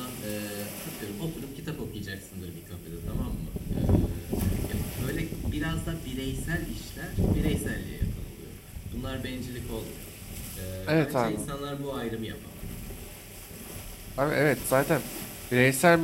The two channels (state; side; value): identical; both; correlation 1.00